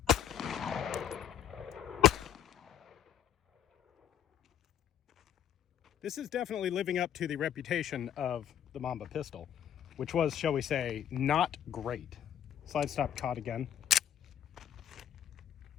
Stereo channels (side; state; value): right; quieter; 9.9 dB